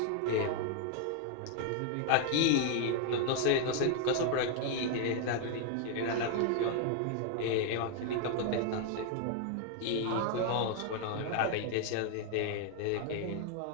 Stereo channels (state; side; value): different; both; correlation 0.00